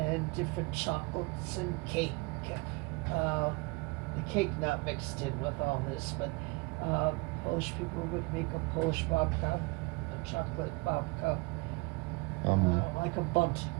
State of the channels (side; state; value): left; quieter; 26.7 dB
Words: different chocolates and cake. The cake not mixed in with all this, but Polish people would make a Polish babka, a chocolate babka, like a bundt